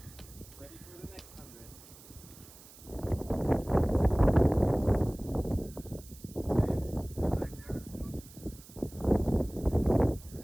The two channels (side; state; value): right; noise; hiss, 20 dB below the sound